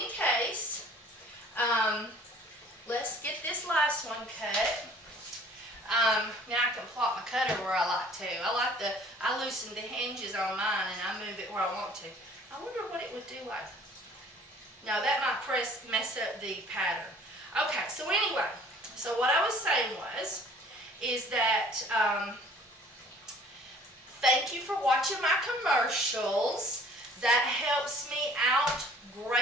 case, let's get this last one cut. Now I can plot my cutter where I like to. I loosen the hinges on mine and I move it where I want to. I wonder what it would do like. No, that might mess up the pattern. Okay, so anyway, so what I was saying is that thank you for watching my commercials. That helps me out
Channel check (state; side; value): normal; both; correlation 0.53